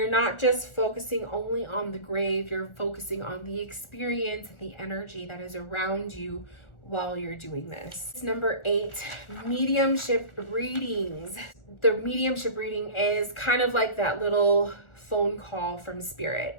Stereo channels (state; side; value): late; right; 1.4 ms